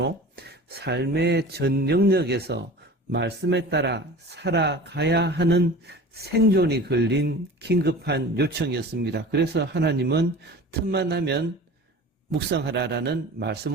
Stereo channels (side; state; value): both; normal; correlation 0.38